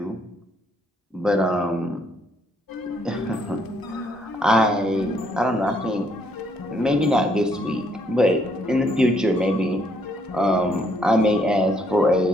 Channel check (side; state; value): both; normal; correlation 0.70